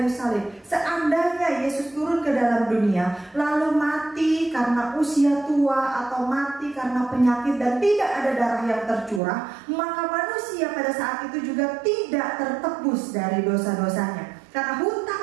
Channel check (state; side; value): drops out; left; at 9.2 s